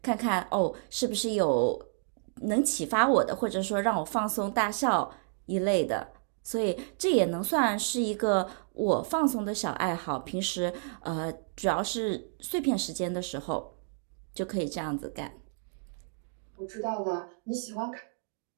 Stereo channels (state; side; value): silent; left; digital silence